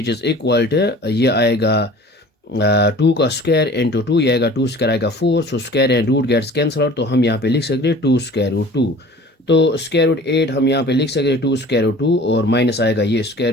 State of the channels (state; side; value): normal; both; correlation 0.45